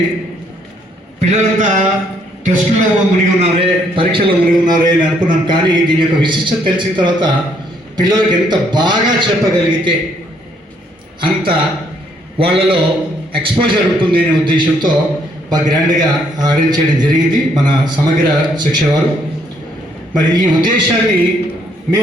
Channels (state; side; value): normal; both; correlation 0.69